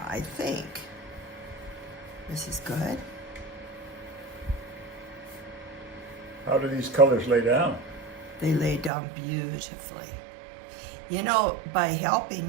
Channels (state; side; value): drops out; left; at 8.9 s